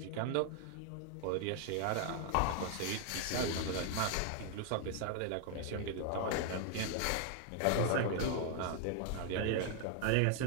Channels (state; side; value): different; both; correlation 0.00